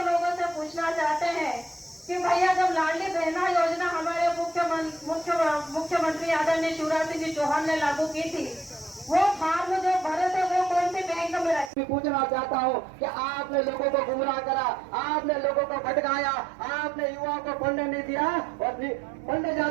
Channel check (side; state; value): left; drops out; at 11.7 s